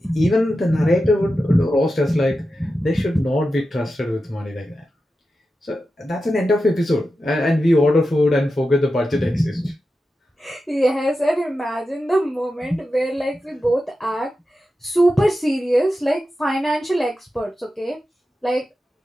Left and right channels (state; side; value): normal; both; correlation 0.91